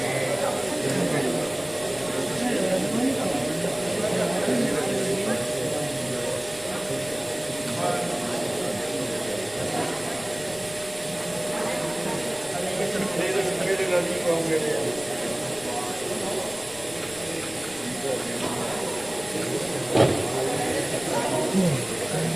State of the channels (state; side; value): noise; left; rumble, 21 dB below the sound